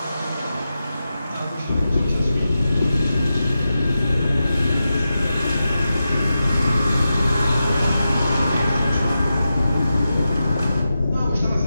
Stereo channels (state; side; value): inverted; both; correlation -0.91